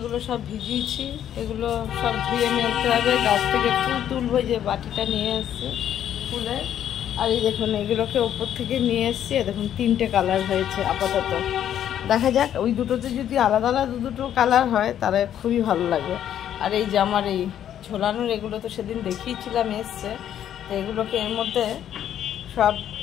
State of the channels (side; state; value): right; quieter; 10.4 dB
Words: সব ভিজিয়েছি, এগুলো সব ধুয়ে মেলতে হবে। গাছ থেকে ফুল তুলবো, যে বাটিটা নিয়ে এসছি ফুলের। আর এই দেখুন এগুলোকে ওপর থেকে নিয়ে এসছি, দেখুন 3টে কালার হয়েছে আপাতত। দেখা যাক, ওই দুটোতে যদি আলাদা আলাদা দুটো কালার হয় তাহলে খুবই ভালো লাগবে। আর এই যে আমার এই ঝোলানোর এগুলো তো সেদিন দেখিয়েছিলাম এসছে, তো এগুলোকে এর মধ্যে সব